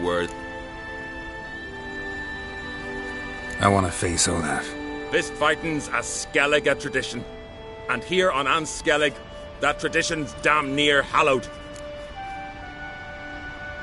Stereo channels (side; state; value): both; identical; correlation 1.00